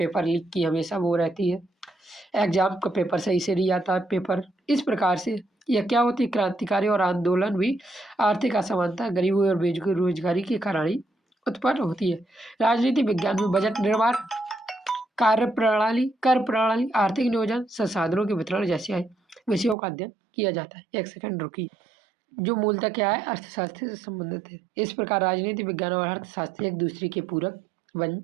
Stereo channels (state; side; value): drops out; left; at 19.8 s